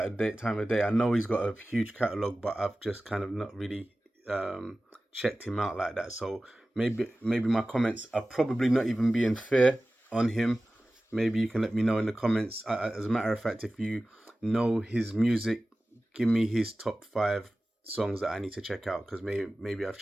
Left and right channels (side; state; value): both; normal; correlation 0.96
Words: of day. I know he's got a huge catalog, but I've just kind of not really checked him out like that. So maybe my comments are probably not even being fair on him. Maybe you can let me know in the comments. As a matter of fact, if you know his music, give me his top 5 songs that I need to check out, because maybe I've